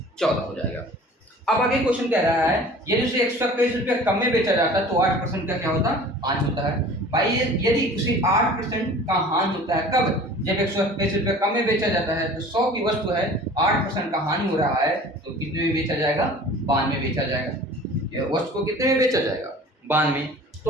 हो जाएगा। अब आगे क्वेश्चन कह रहा है यदि उसे 121 रुपया कम में बेचा जाता है तो 8% का क्या होता है हानि होता है। भाई यदि उसे 8% का हानि होता है कब, जब 121 रुपया कम में बेचा जाता है तो 100 की वस्तु है 8% का हानि हो रहा है तो कितने में बेचा जाएगा 92 में बेचा जाएगा। यह वस्तु को कितने में बेचा जाएगा 92।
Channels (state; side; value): normal; both; correlation 0.45